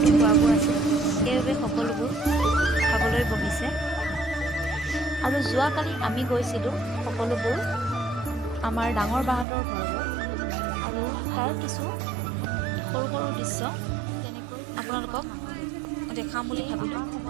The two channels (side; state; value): left; drops out; at 9.5 s